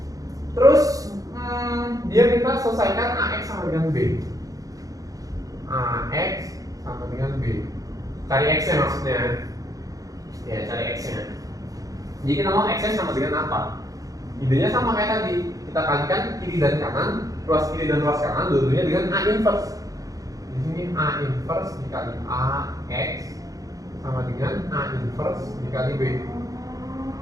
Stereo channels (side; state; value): left; late; 0.17 ms